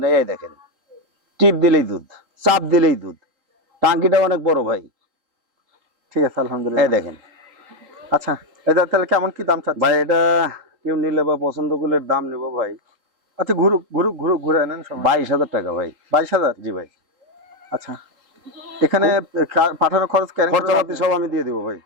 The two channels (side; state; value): left; late; 3.8 ms